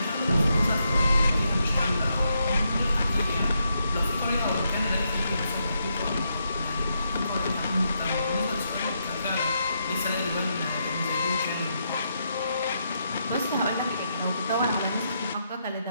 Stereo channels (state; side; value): inverted; both; correlation -0.80